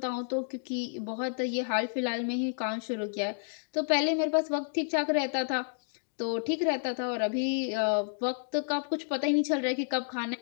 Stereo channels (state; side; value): silent; right; digital silence